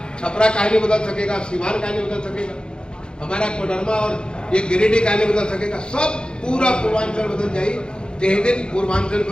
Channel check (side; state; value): right; late; 0.050 ms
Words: छपरा कहानी बदल सकेगा, सीवान कहानी बदल सकेगा, हमारा कोडरमा और ये गिरिडीह कहानी बदल सकेगा। सब पूरा पूर्वांचल बदल जाए। यही दिन पूर्वांचल